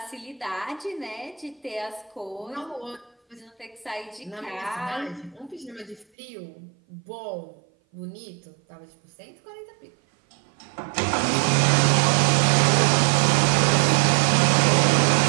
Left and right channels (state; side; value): drops out; left; at 6.1 s